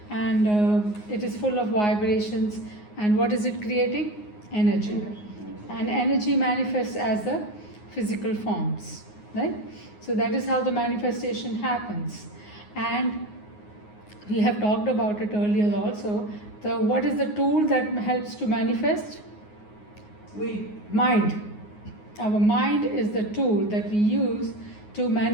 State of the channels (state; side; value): late; right; 9.6 ms